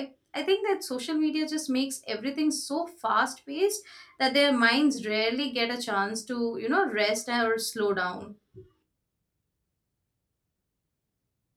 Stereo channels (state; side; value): identical; both; correlation 1.00